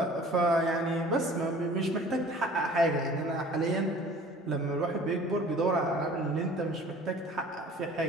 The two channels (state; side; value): normal; both; correlation 0.48